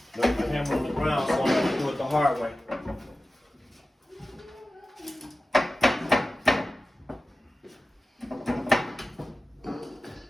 Left my hammer on the ground, so I'm going to do it the hard way.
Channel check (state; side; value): normal; both; correlation 0.95